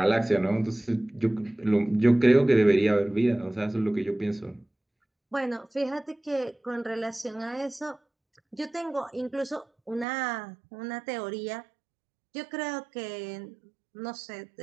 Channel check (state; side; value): drops out; left; at 10.1 s